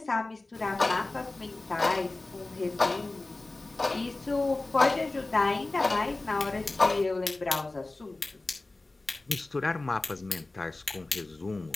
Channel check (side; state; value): right; quieter; 3.1 dB